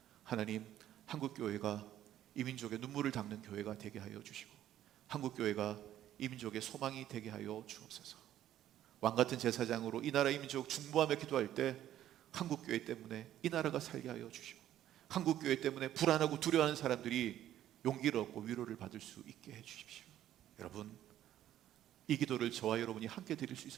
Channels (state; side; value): quieter; left; 12.0 dB